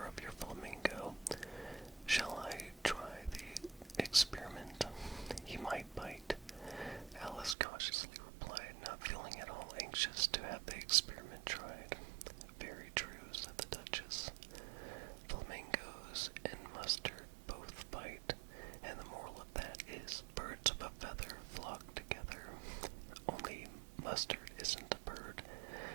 of your flamingo. Shall I try the experiment? He might bite. Alice cautiously replied, not feeling at all anxious to have the experiment tried. Very true, said the Duchess. Flamingos and mustard both bite, and the moral of that is birds of a feather flock together. Only mustard isn't a bird,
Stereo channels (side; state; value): left; drops out; at 7.6 s